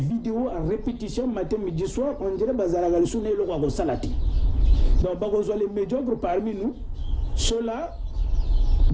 à répétition matin, midi, soir, on dirait que c'est le salati. Donc, les médiocres parmi nous, ceux-là,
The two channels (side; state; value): both; identical; correlation 1.00